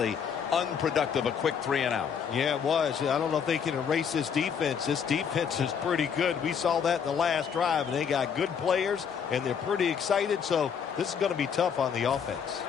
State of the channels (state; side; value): quieter; right; 7.2 dB